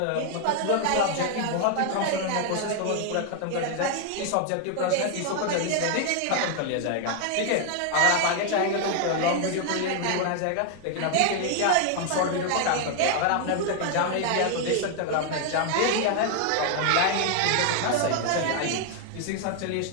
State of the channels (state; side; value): different; both; correlation 0.00